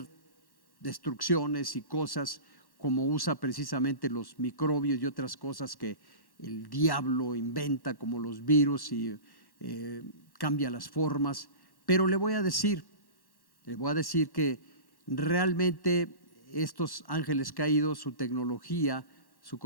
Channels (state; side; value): late; right; 1.1 ms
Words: destrucciones y cosas, como usa precisamente los microbios y otras cosas que el diablo inventa, como los virus, y cambia las formas. Pero le voy a decir que realmente estos ángeles caídos, su tecnología, su